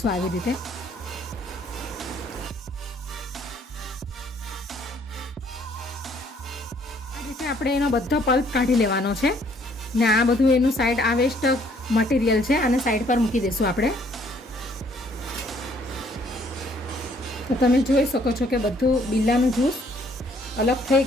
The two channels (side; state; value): both; normal; correlation 0.63